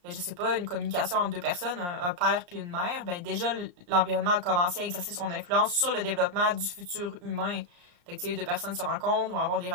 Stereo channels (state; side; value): late; left; 34 ms